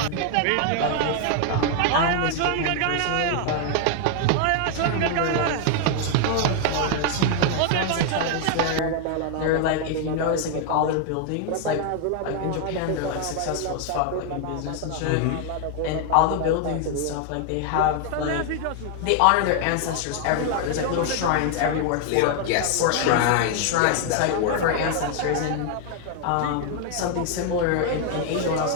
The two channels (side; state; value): both; different; correlation 0.00